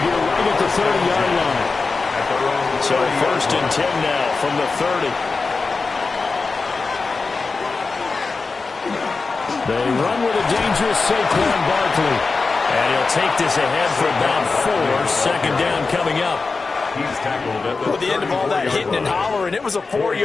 right at the 30-yard line. So 1st and 10 now from the 30. They run with a dangerous Saquon Barkley. And he'll take this ahead for about 4. 2nd down coming up. He's tackled at the end of all that hitting and hollering, it was a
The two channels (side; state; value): right; quieter; 4.2 dB